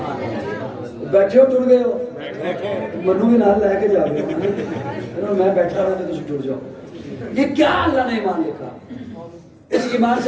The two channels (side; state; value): both; identical; correlation 1.00